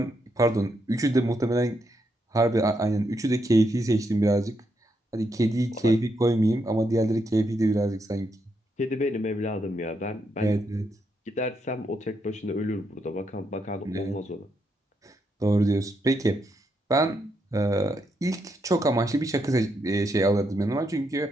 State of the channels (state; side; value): normal; both; correlation 0.80